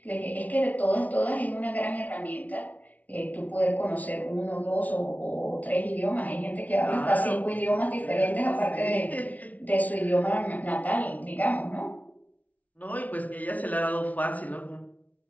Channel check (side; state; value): right; late; 0.072 ms